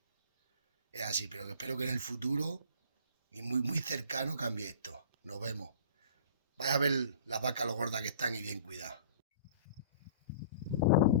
así, pero que espero que en el futuro y muy cercano cambie esto. Nos vemos. Vais a ver las vacas lo gordas que están y bien cuidadas.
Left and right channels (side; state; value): both; inverted; correlation -0.46